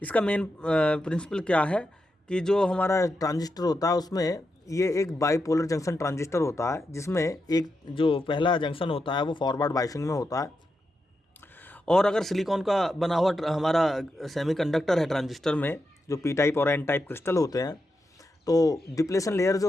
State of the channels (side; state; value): both; normal; correlation 0.86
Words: इसका मेन प्रिंसिपल क्या है कि जो हमारा ट्रांजिस्टर होता है उसमें ये एक बाईपोलर जंक्शन ट्रांजिस्टर होता है, जिसमें एक जो पहला जंक्शन होता है वो फॉरवर्ड बायसिंग में होता है। और अगर सिलिकॉन का बना हुआ हमारा सेमीकंडक्टर है ट्रांजिस्टर में, जो पी टाइप और एन टाइप क्रिस्टल होते हैं, तो डिप्लेशन लेयर